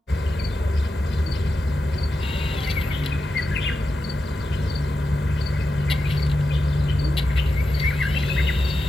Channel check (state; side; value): normal; both; correlation 0.89